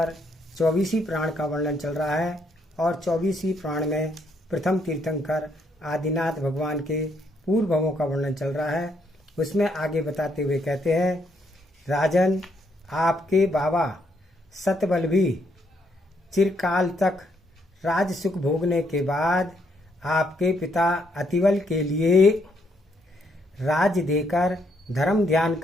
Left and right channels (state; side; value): normal; both; correlation 0.73